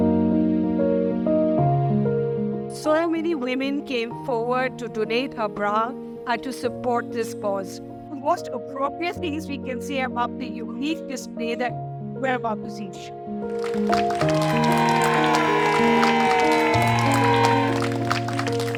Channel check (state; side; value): identical; both; correlation 1.00